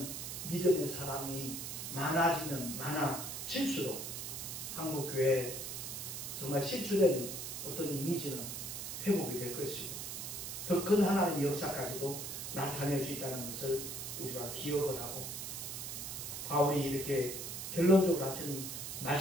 믿음의 사람이 많아지면 많아질수록 한국교회 정말 실추된 어떤 이미지는 회복이 될 것이고 더 큰 하나님의 역사까지도 나타낼 수 있다는 것을 우리가 기억을 하고, 바울이 이렇게 결론적으로 하신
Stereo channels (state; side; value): noise; right; hiss, 6 dB below the sound